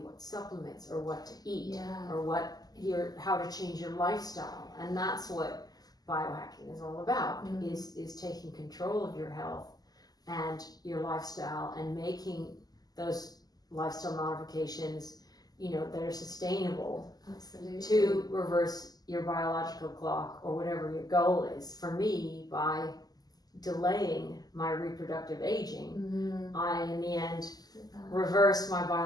what supplements or what to eat or how to change your lifestyle. And that's what biohacking is all about, is taking control of your health and your lifestyle, and making those lifestyle modifications, that are sustainable. Absolutely. To reverse your biological clock or whatever your goal is. For me, by delaying my reproductive aging, I in the end reverse my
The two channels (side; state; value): right; late; 0.19 ms